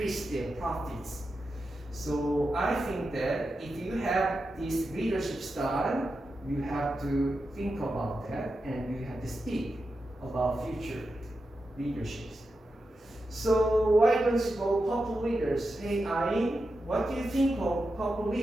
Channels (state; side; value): normal; both; correlation 0.89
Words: their profits. So I think that if you have this leadership style, you have to think about that and you have to speak about future leaderships. So why don't you go purple leaders? Hey Ayn, what do you think of purple